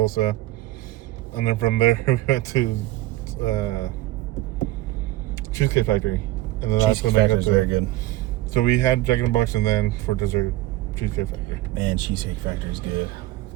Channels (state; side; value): quieter; left; 16.9 dB